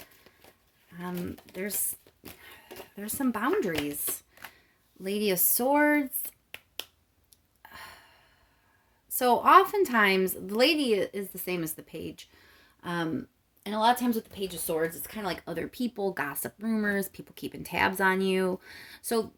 There's some boundaries. Lady of Swords. So oftentimes, the lady is the same as the page. And a lot of times with the Page of Swords, it's kind of like other people, gossip, rumors, people keeping tabs on you. So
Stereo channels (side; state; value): both; identical; correlation 1.00